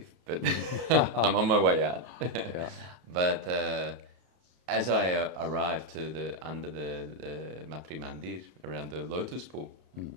but I'm on my way out. Yeah. But as I arrived to under the Matri Mandir, around the lotus pool,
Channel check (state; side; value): late; left; 32 ms